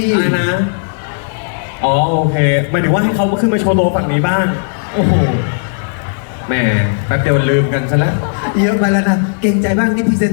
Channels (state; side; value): silent; right; digital silence